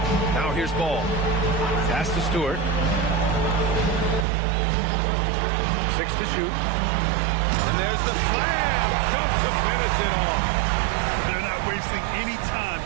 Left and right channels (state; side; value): drops out; left; at 4.2 s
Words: Now here's Ball. Pass to Stewart. 6 to shoot. And there's the slam. Dunk to finish it off. They're not wasting any time